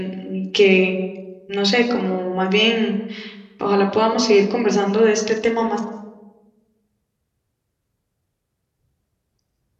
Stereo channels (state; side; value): identical; both; correlation 1.00